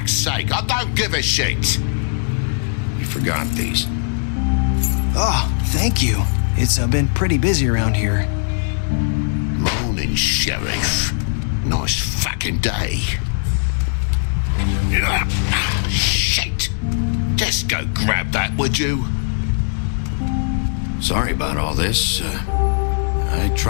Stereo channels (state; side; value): silent; right; digital silence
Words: sake. I don't give a shit. You forgot these. Oh, thank you. It's been pretty busy around here. Morning, Sheriff. Nice fucking day. Shit. Just go grab that, would you? Sorry about all this. I